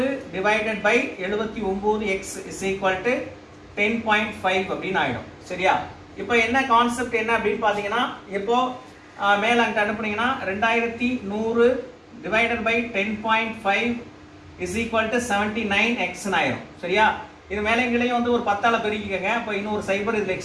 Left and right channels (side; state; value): both; identical; correlation 1.00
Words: divided by 79 x is equal to 10.5 அப்படின்னு ஆயிடும். சரியா? இப்போ என்ன கான்செப்ட் என்ன அப்படின்னு பாத்தீங்கன்னா, இப்போ மேல அங்க அனுப்புனீங்கன்னா 2100 divided by 10.5 is equal to 79 x ஆயிரும். சரியா? இது மேலைங்களையும் வந்து ஒரு 10ஆல பெருக்கிக்கங்க. அப்போ இன்னொரு சைபர் இதுல